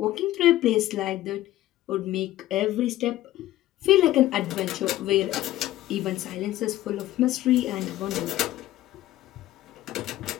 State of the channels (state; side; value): quieter; right; 15.0 dB